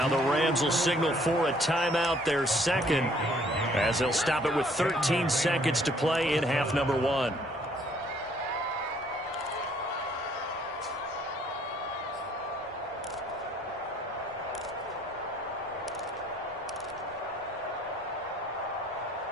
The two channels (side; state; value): both; normal; correlation 0.62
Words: the Rams will signal for a timeout, their second, as they'll stop it with 13 seconds to play in half number one.